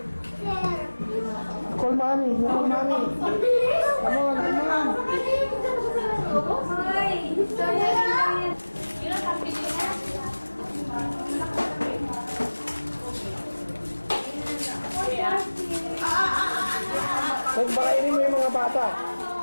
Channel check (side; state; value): both; inverted; correlation -1.00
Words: Call mommy. Call mommy. Come on, come on. Hoy! Yun ang pambili na. Pagpakainin mo yung mga bata.